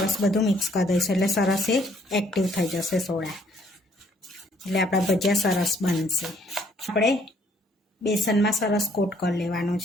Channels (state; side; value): normal; both; correlation 0.64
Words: બધું મિક્સ કરી દઈશું. એટલે સરસ એ એક્ટિવ થઈ જશે સોડા. એટલે આપણા ભજીયા સરસ બનશે. આપણે બેસનમાં સરસ કોટ કરી લેવાનું